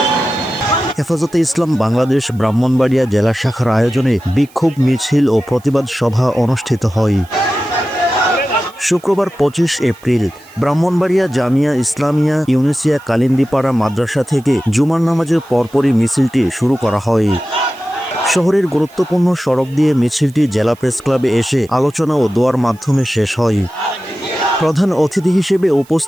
হেফাজতে ইসলাম বাংলাদেশ ব্রাহ্মণবাড়িয়া জেলা শাখার আয়োজনে বিক্ষোভ মিছিল ও প্রতিবাদ সভা অনুষ্ঠিত হয়। শুক্রবার 25 এপ্রিল ব্রাহ্মণবাড়িয়া জামিয়া ইসলামিয়া ইউনিসিয়া কালিন্দিপাড়া মাদ্রাসা থেকে জুমার নামাজের পরপরই মিছিলটি শুরু করা হয়। শহরের গুরুত্বপূর্ণ সড়ক দিয়ে মিছিলটি জেলা প্রেস ক্লাবে এসে আলোচনা ও দোয়ার মাধ্যমে শেষ হয়। প্রধান অতিথি হিসেবে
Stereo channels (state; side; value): noise; right; hiss, 28 dB below the sound